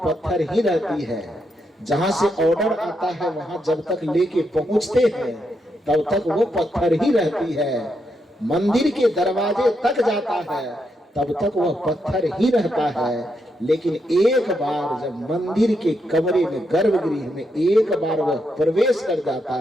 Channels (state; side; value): normal; both; correlation 0.81